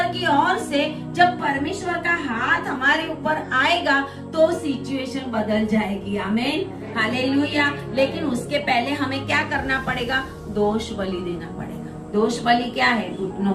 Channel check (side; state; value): both; identical; correlation 1.00